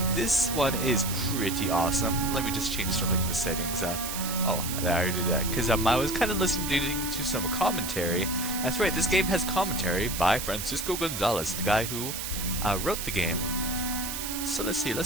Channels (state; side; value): noise; right; hiss, 5 dB below the sound